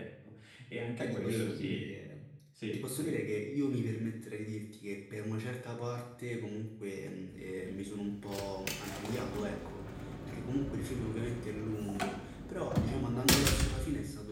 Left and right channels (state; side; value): identical; both; correlation 1.00